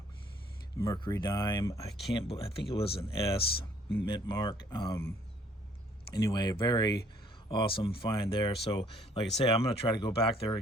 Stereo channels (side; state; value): both; normal; correlation 0.61